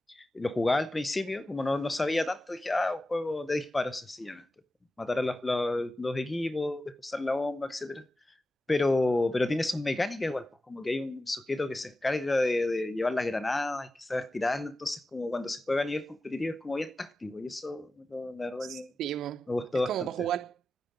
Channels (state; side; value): normal; both; correlation 0.93